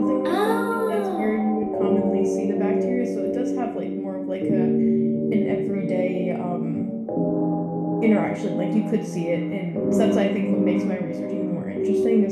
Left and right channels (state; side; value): identical; both; correlation 1.00